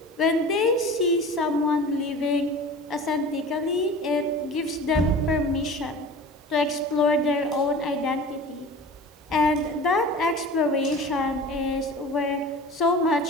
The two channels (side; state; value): both; normal; correlation 0.38